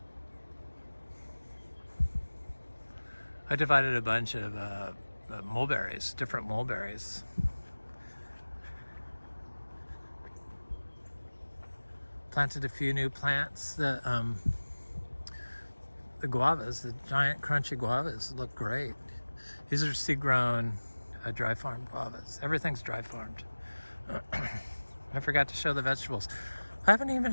I divided a bunch of mulberries, different mulberries. Planted a few new plants. The guavas, the giant crunchy guavas, look great. These are seed-grown, dry farm guavas. Everything's dry farmed. I forgot to show the vegetables. I haven't even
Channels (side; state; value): both; inverted; correlation -1.00